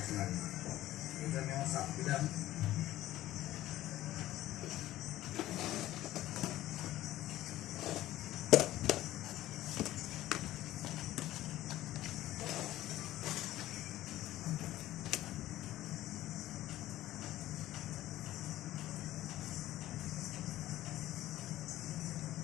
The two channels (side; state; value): right; quieter; 15.0 dB